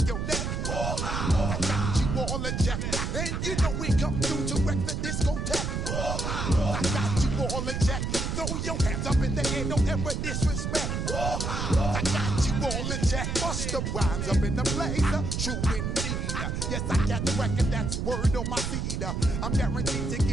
your neck. I got you all in check, and you know we come through to wreck the discotheque. I got you all in check. Throw your hands up in the air, don't ever disrespect. I got you all in check. Bust the rhymes up in the place, true indeed. Yes, I got the record, that's word on my seed. I'm guaranteed to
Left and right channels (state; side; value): noise; right; rumble, 1 dB below the sound